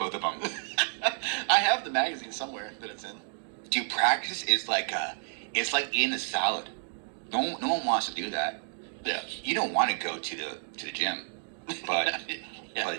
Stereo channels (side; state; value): left; silent; digital silence